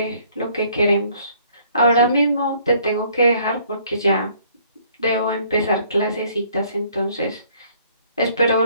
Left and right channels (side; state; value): both; inverted; correlation -0.62